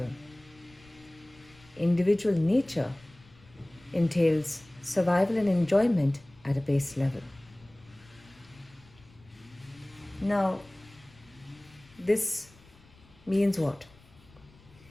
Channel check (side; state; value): left; noise; rumble, 26 dB below the sound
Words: Individual nature entails survival and enjoyment at a base level. Now, this means what?